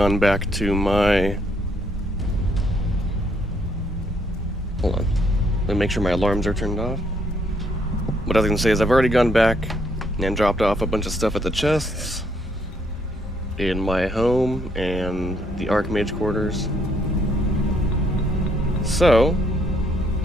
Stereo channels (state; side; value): normal; both; correlation 0.71